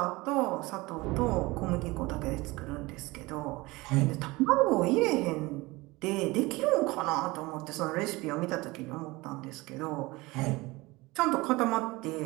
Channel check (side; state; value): left; quieter; 22.0 dB